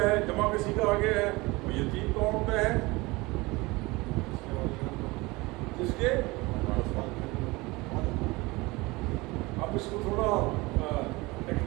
जमा किसी का आगे है, वो यतीम कौन होता है, जिसके, अब इसको थोड़ा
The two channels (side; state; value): left; quieter; 22.9 dB